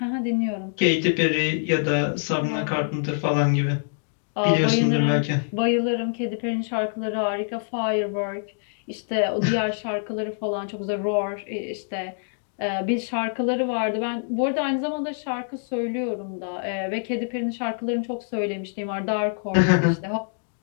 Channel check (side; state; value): right; silent; digital silence